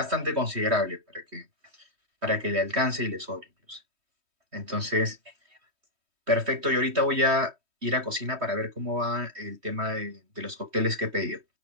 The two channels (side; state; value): left; late; 3.2 ms